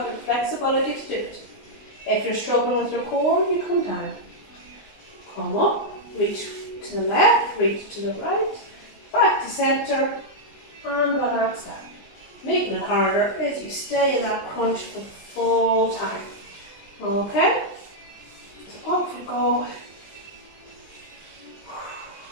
the flexibility to do it. If you're struggling with your core, you come down. Come up, reach to the left, reach to the right, back to centre, and relax down. Making it harder is you stay in that crunch for the full time. Okay? So off we go.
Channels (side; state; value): right; late; 19 ms